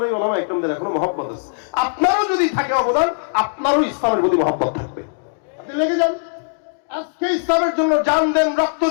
ওলামায়ে কেরামদের এখনো মহব্বত আছে। আপনারও যদি থাকে অবদান, আপনারও ইসলামের প্রতি মহব্বত থাকবে। আপনি লেগে যান, আজকে ইসলামের জন্য জান দেন, রক্ত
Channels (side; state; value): right; silent; digital silence